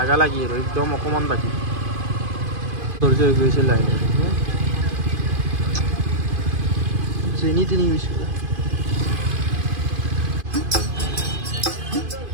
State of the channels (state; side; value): late; left; 2.5 ms